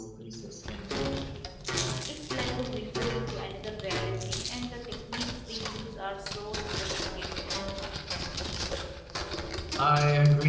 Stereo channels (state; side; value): identical; both; correlation 1.00